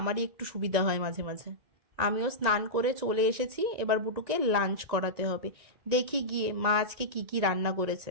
আমারই একটু সুবিধা হয় মাঝে মাঝে। আমিও স্নান করে চলে এসেছি, এবার বুটুকে লাঞ্চ করাতে হবে। দেখি গিয়ে মা আজকে কি কি রান্না করেছে।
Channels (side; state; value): left; late; 1.9 ms